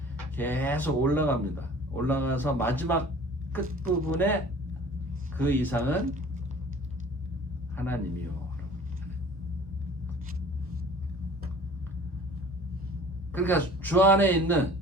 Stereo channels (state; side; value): normal; both; correlation 0.47